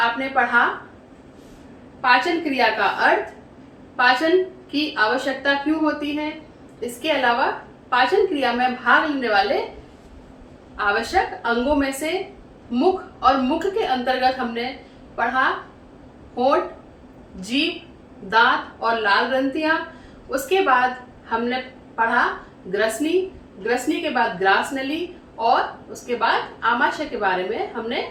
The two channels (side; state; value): both; identical; correlation 1.00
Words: पढ़ा पाचन क्रिया का अर्थ, पाचन की आवश्यकता क्यों होती है, इसके अलावा पाचन क्रिया में भाग लेने वाले आवश्यक अंगों में से मुख और मुख के अंतर्गत हमने पढ़ा होंठ, जीभ, दांत और लाल ग्रंथियां। उसके बाद हमने पढ़ा ग्रसनी, ग्रसनी के बाद ग्रास नली और उसके बाद आमाशय के बारे में हमने